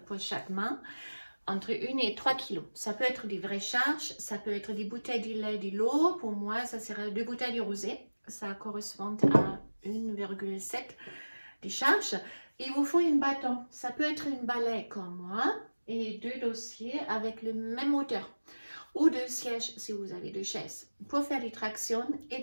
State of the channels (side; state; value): both; inverted; correlation -1.00